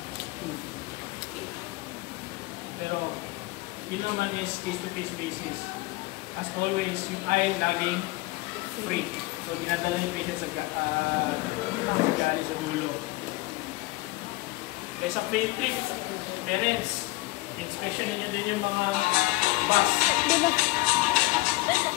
Pero, yun naman is face-to-face basis. As always, yung eye laging free. So, dinadala yung patient sa gali sa dulo. Kaya sa free trip, parents, inspection ninyo din yung mga bus.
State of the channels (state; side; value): quieter; right; 21.5 dB